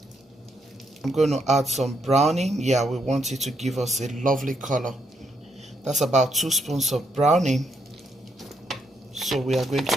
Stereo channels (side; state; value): both; normal; correlation 0.77